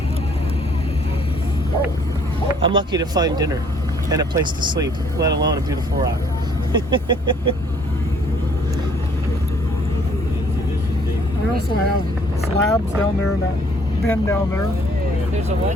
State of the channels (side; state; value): both; normal; correlation 0.61